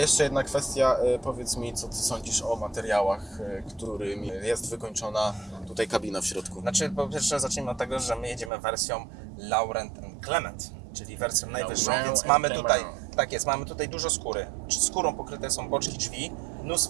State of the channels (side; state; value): left; drops out; at 8.5 s